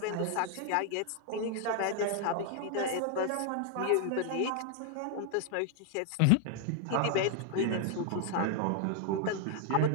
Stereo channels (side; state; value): both; different; correlation 0.00